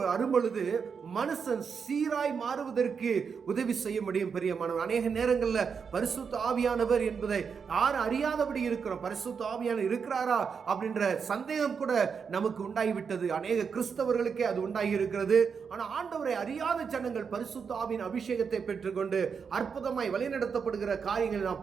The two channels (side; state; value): left; quieter; 6.2 dB